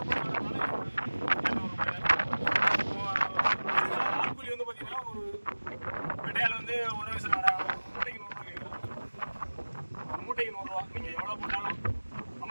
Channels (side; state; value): both; inverted; correlation -1.00